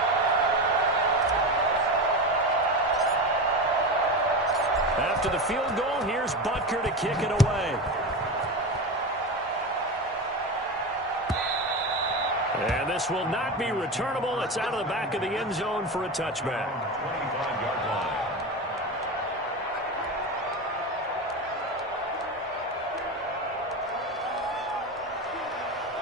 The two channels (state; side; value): normal; both; correlation 0.22